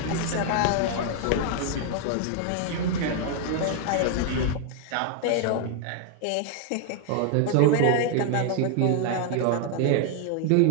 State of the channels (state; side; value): different; both; correlation 0.00